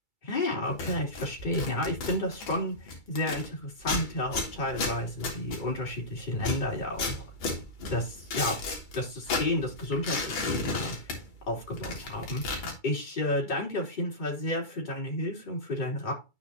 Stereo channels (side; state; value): right; late; 2.3 ms